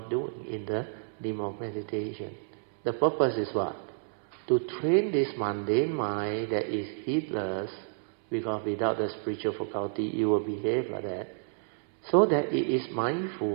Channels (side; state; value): left; silent; 58 dB below the other